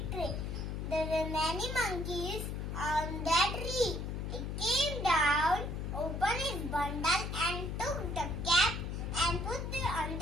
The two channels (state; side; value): noise; left; hum, 4 dB below the sound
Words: tree. There were many monkeys on that tree. It came down, opened its bundle and took the cap and put it on